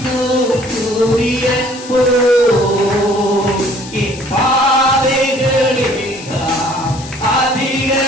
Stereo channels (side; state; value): left; noise; hiss, 16 dB below the sound